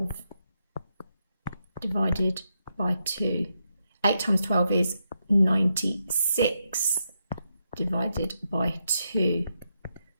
divided by 2. 8 times 12 is 96 divided by 2,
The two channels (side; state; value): both; inverted; correlation -0.82